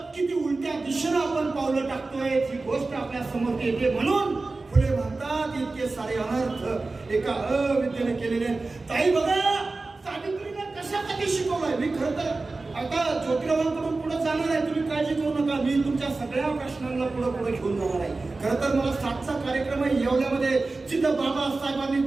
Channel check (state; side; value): quieter; left; 3.5 dB